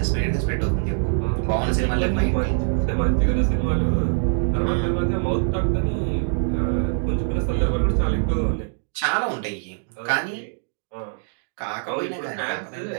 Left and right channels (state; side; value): silent; left; digital silence